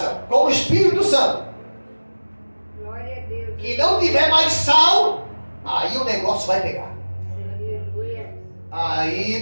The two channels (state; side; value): inverted; both; correlation -1.00